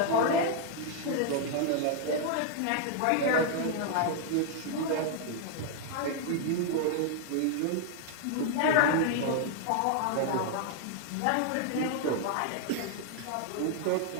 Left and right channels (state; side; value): different; both; correlation 0.00